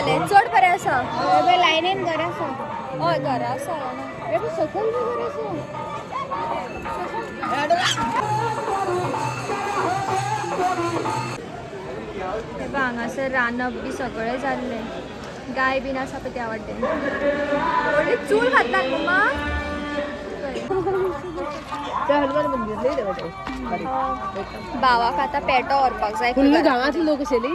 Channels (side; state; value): both; identical; correlation 1.00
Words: चड बरें आसा लायनीन घर आसा हय घरा आसा बेबी सकयल बी घर आसा हे बघ हांगासर रांदप बी सगळें जाल्लें गाय बीन आसा पळय त्या वाटेन व्हडली चूल घातला मम्मा भावाक आतां पेटो व्हरपाक जाय फुल्ल गांवांतली लोक